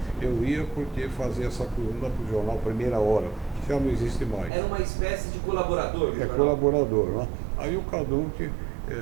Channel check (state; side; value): drops out; left; at 4.5 s